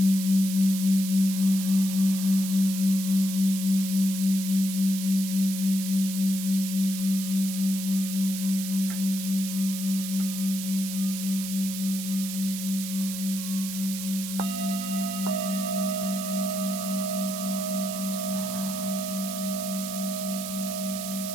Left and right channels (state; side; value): noise; right; hiss, 7 dB below the sound